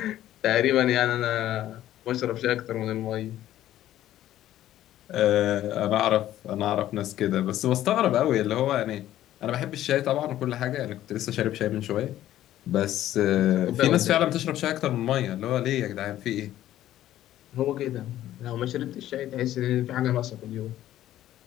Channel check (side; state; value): right; quieter; 13.1 dB